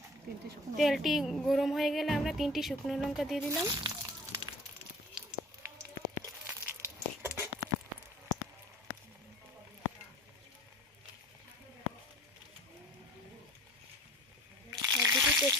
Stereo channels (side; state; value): both; normal; correlation 0.45